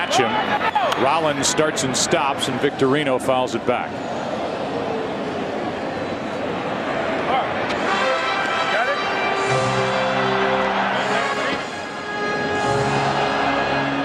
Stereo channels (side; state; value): both; identical; correlation 1.00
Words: him. Rollins starts and stops, and Victorino fouls it back.